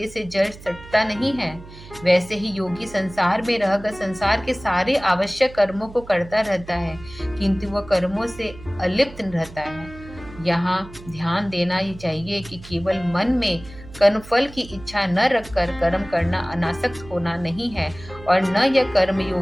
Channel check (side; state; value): right; noise; hum, 17 dB below the sound